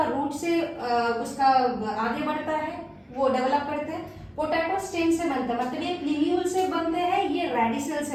रूट से उसका आगे बढ़ता है, वो डेवलप करते हैं। पोटैटो स्टेम से बनता है, मतलब ये प्लीम्यूल से बनते हैं, ये रेडिसल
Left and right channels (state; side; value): identical; both; correlation 1.00